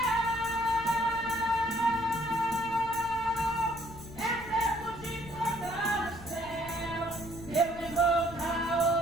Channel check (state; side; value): noise; left; rumble, 15 dB below the sound